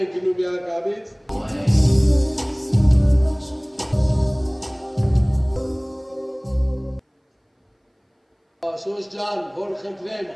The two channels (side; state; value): both; identical; correlation 1.00